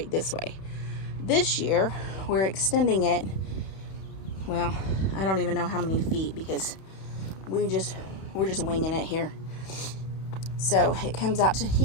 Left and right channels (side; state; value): right; late; 31 ms